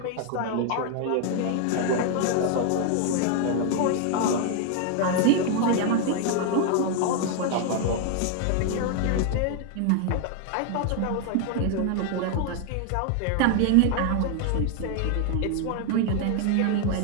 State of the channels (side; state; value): both; different; correlation 0.00